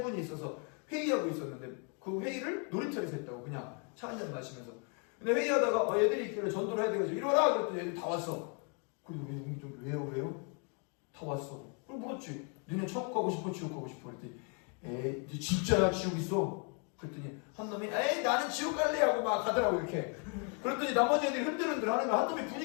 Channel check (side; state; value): right; quieter; 38.1 dB